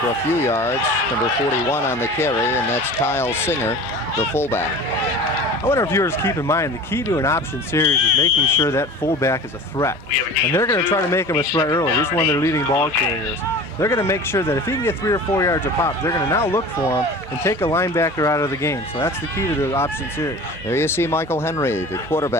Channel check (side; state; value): both; normal; correlation 0.38